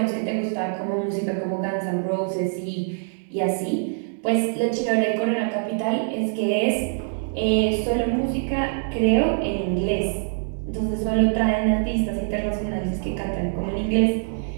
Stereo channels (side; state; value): left; silent; digital silence